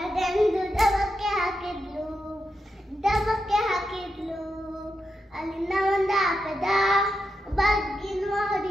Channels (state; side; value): normal; both; correlation 0.86